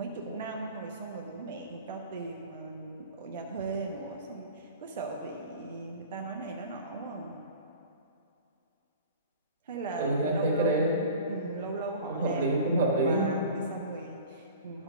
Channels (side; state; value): both; inverted; correlation -0.40